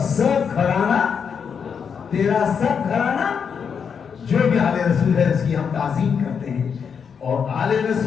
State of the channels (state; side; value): quieter; right; 6.7 dB